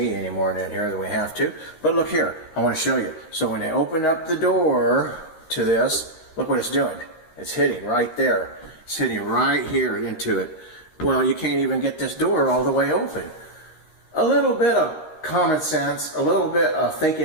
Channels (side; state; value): right; late; 13 ms